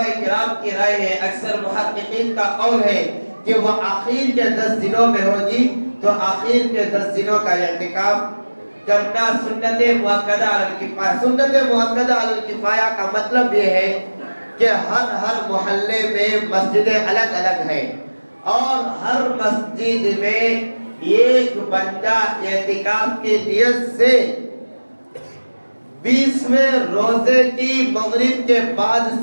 کرام کی رائے ہے، اکثر محققین کا قول ہے کہ وہ آخر کے 10 دنوں میں ہوگی، تو آخر کے 10 دنوں کا اعتکاف کرنا سنت مؤکدہ علی الکفایہ۔ سنت مؤکدہ علی الکفایہ کا مطلب یہ ہے کہ ہر محلے میں مسجدیں الگ الگ ہیں، اور ہر مسجد میں ایک بندہ اعتکاف کی نیت سے 20ویں روزے کی مغرب کے بعد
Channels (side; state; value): both; inverted; correlation -1.00